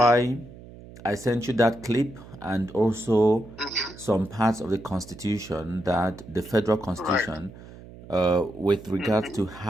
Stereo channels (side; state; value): right; noise; hum, 18 dB below the sound